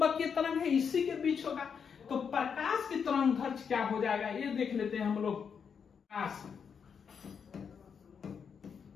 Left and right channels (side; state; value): right; quieter; 6.7 dB